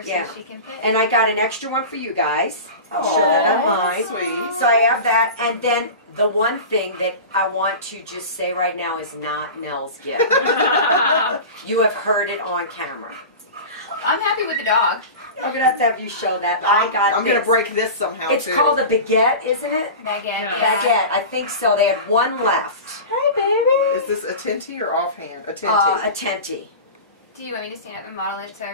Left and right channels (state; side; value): inverted; both; correlation -0.31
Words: so Yeah. she can fit. And I got an extra one for you guys. I'll show that Aw, online. sweet. So I have that, and then the one thing that I want to just say right now is not Nell's gift. You have heard it on camera. I'm happy with the dog. I'm gonna have to have you show that. I got I'm this. going to break this somehow, It's too. called a baguette, isn't it? Baguette. Yeah. Baguette. I think so. They had one left. Hi, baby. Is this a tinty or offhand? A tinty. A tenty. Do you want me to stand up and model it so